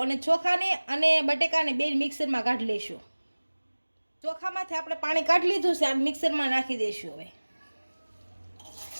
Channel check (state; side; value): inverted; both; correlation -1.00